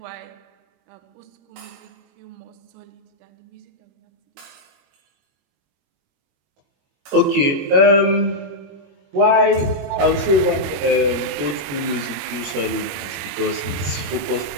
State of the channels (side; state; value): left; late; 21 ms